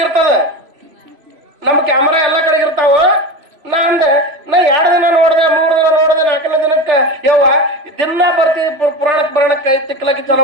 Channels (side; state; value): left; late; 3.0 ms